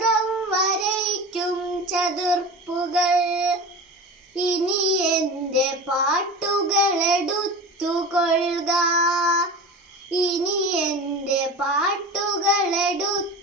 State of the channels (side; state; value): both; normal; correlation 0.32